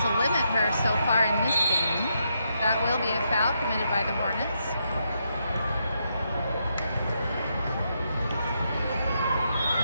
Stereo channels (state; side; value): inverted; both; correlation -0.80